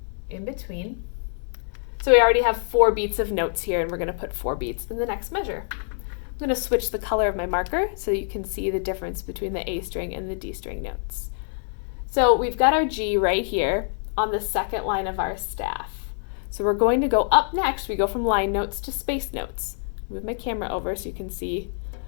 in between. So we already have 4 beats of notes here, and we're going to put 4 beats in the next measure. I'm going to switch the color of my marker so you can see the difference between the A string and the D string notes. So we've got our G right here on the second line of our staff. So we're going to go up next. We go from line notes to space notes. Move my camera over so you can see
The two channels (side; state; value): right; silent; digital silence